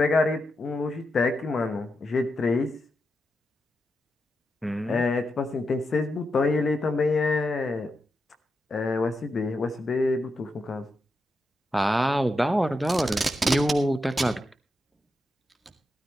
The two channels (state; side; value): normal; both; correlation 0.86